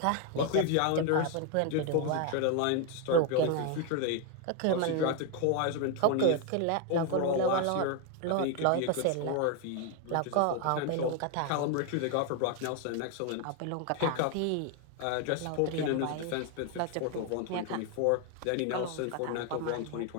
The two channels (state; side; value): different; both; correlation 0.01